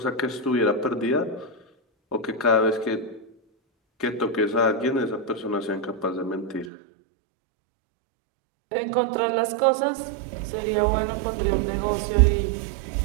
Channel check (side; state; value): left; drops out; at 6.7 s